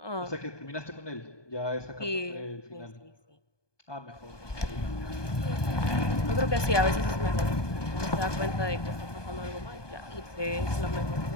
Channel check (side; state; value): right; late; 1.2 ms